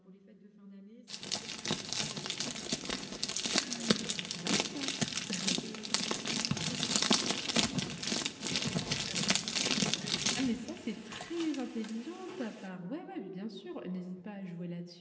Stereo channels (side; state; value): both; identical; correlation 1.00